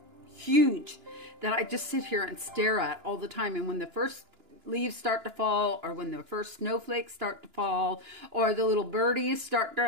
huge that I just sit here and stare at all the time. And when the first leaves start to fall, or when the first snowflakes start to fall, or the little birdies start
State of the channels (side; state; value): left; late; 2.9 ms